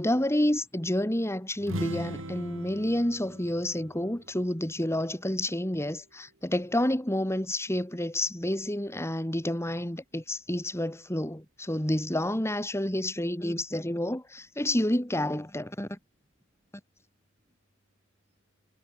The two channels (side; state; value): both; normal; correlation 0.81